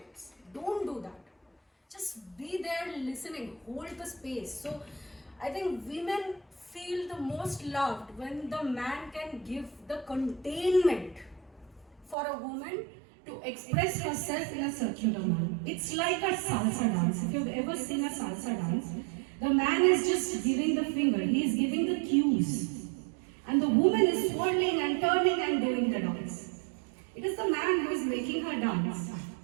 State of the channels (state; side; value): drops out; left; at 12.2 s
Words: Don't do that. Just be there listening, hold the space. So I think women feel the most loved when the man can give the containment for a woman to express herself in a circular manner. It's like a salsa dance. If you've ever seen a salsa dance, the man is just giving the finger, he is giving the cues. And the woman is twirling and turning and doing the dance. It is the man who is making her dance.